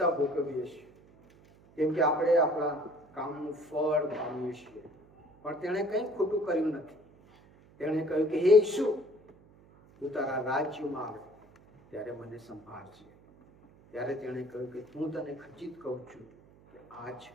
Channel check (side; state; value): right; noise; hum, 26 dB below the sound